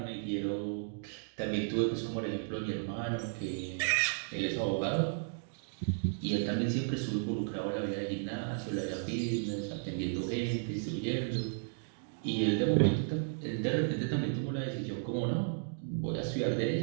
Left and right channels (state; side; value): silent; left; digital silence